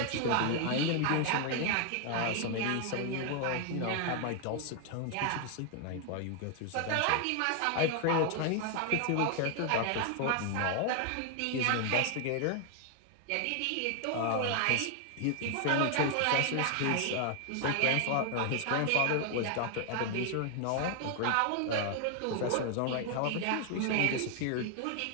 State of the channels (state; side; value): different; both; correlation 0.00